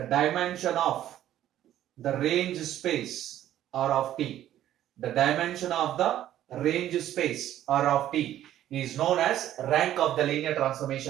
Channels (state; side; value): quieter; left; 12.3 dB